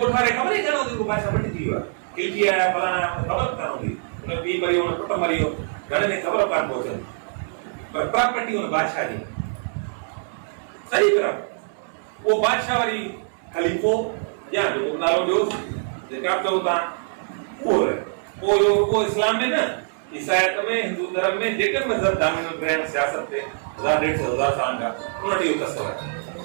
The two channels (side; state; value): left; silent; 60 dB below the other